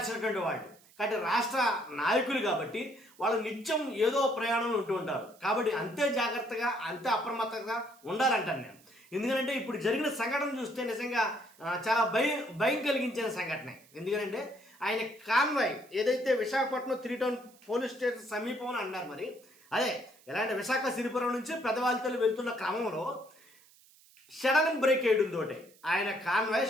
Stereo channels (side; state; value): right; noise; hiss, 27 dB below the sound